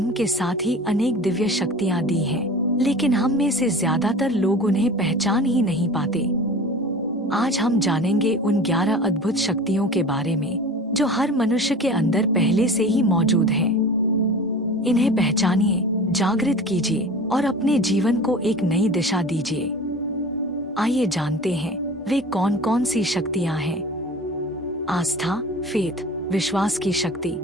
के साथ ही अनेक दिव्य शक्तियाँ दी हैं, लेकिन हम में से ज्यादातर लोग उन्हें पहचान ही नहीं पाते। आज हम जानेंगे उन 11 अद्भुत शक्तियों के बारे में जो हर मनुष्य के अंदर पहले से ही मौजूद हैं। इन्हें पहचानिए, जागृत कीजिए और अपने जीवन को एक नई दिशा दीजिए। आइए जानते हैं वे कौन कौन सी शक्तियां हैं। आस्था, फेथ, विश्वास की शक्ति।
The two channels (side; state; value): both; normal; correlation 0.38